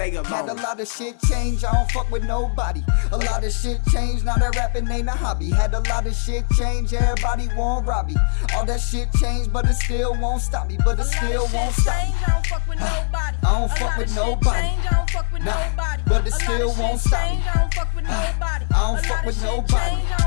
alone. Had a lot of shit change, I don't fuck with nobody. A lot of shit change, now that rapping ain't a hobby. Had a lot of shit change, everybody want rob me. All that shit changed, but it still won't stop me. But it still won't stop me. I don't fuck with nobody. I don't fuck with nobody. I don't fuck with Nah, nobody. but it still won't stop me. I don't fuck with nobody. I don't fuck with nobody. I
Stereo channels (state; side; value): silent; right; 62 dB below the other